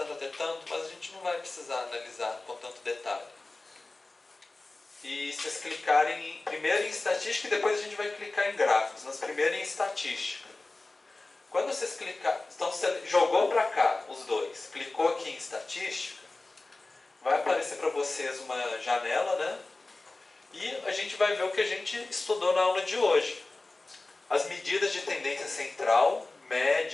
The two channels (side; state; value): right; quieter; 3.2 dB